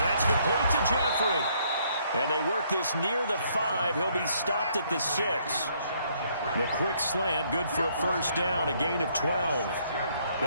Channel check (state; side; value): inverted; both; correlation -0.68